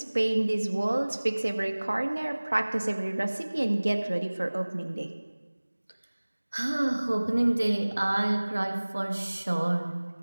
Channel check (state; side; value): inverted; both; correlation -1.00